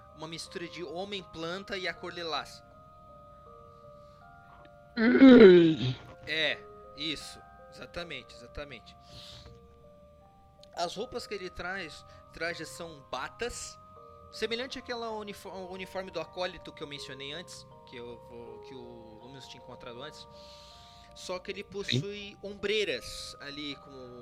uma mistura de homem-planta e a cor lilás. É, isso, exatamente. As roupas que ele traz são batas, semelhante àquela uniforme do acólito que eu mencionei antes, que o Luminous tinha encontrado antes. Só que ele possui ombreiras ali,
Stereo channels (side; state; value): both; identical; correlation 1.00